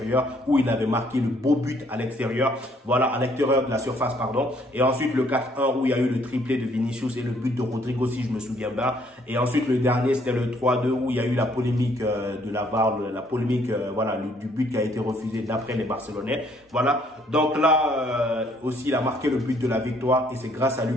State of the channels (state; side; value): normal; both; correlation 0.65